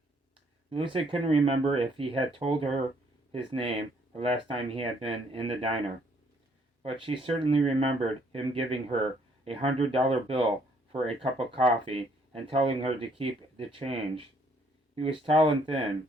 Lucy couldn't remember if he had told her his name the last time he had been in the diner, but she certainly remembered him giving her $100 bill for a cup of coffee and telling her to keep the change. He was tall and thin,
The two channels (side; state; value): both; normal; correlation 0.66